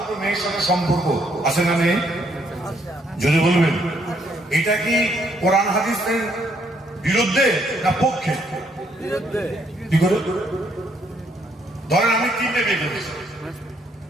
মেয়ের সাথে সম্পর্ক আছে না নেই? যদি বলবেন এটা কি কোরআন হাদিসের বিরুদ্ধে না পক্ষে? কি করে? ধরেন আমি 3টে বিয়ে করেছি,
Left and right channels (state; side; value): normal; both; correlation 0.70